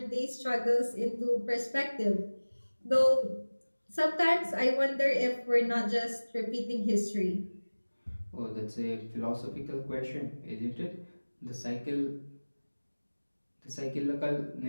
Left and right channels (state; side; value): inverted; both; correlation -1.00